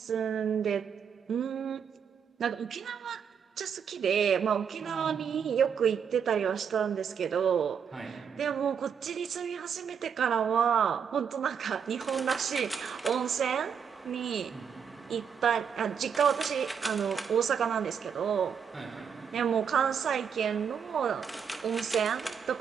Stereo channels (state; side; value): quieter; left; 7.2 dB